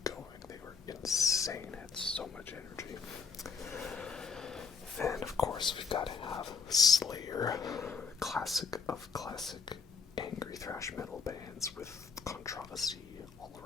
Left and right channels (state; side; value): quieter; right; 5.5 dB